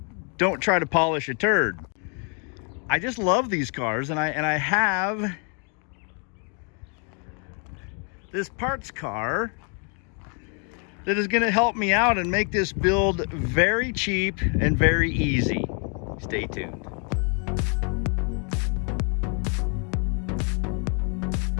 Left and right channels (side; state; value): right; quieter; 38.8 dB